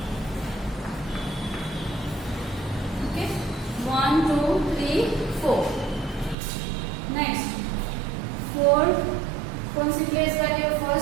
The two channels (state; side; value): drops out; left; at 6.4 s